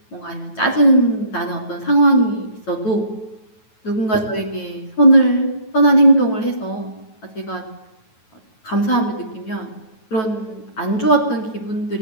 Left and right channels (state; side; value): late; right; 9.2 ms